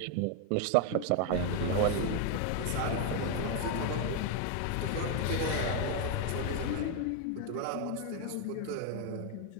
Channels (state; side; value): different; both; correlation 0.01